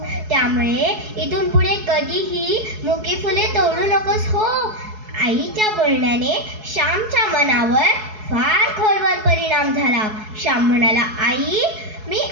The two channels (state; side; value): late; left; 4.7 ms